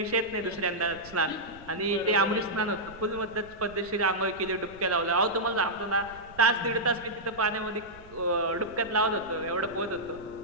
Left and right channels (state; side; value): noise; right; rumble, 21 dB below the sound